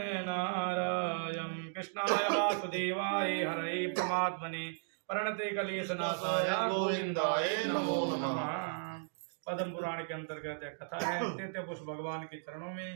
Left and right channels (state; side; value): silent; left; digital silence